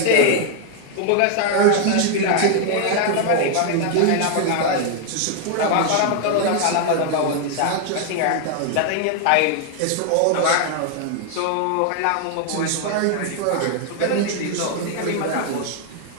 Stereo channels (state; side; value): different; both; correlation 0.00